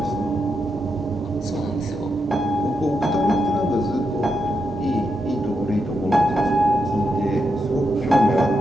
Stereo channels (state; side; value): normal; both; correlation 0.84